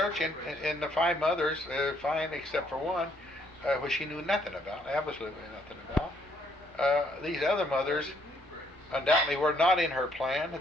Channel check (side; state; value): both; normal; correlation 0.69